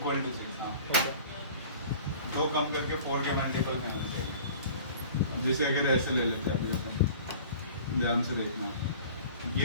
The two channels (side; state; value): both; inverted; correlation -0.45